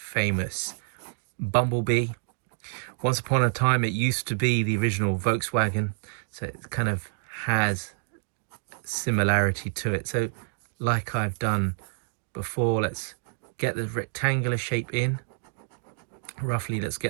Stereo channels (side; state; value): left; silent; digital silence